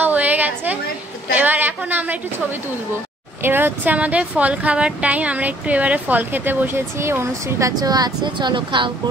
হয়ে গেছে। এবার এখন আমরা একটু ছবি তুলবো। এবার হচ্ছে আমাদের ফল খাবার টাইম, আমরা একটু এবারে ফল খেতে বসেছি, অনুশ্রীর কাছেও আছে, চলো খাও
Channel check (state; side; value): normal; both; correlation 0.61